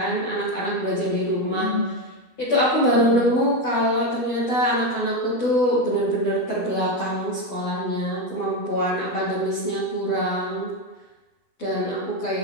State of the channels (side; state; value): right; late; 12 ms